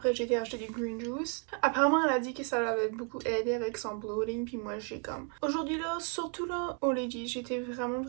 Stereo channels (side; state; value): left; quieter; 38.8 dB